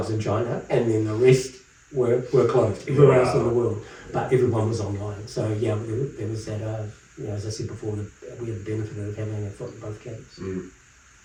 in China, and then the rest were closed everywhere else in the world, but everyone was online. So there was that, as I said before, we had the benefit of having a foot in both camps.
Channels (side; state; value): both; identical; correlation 1.00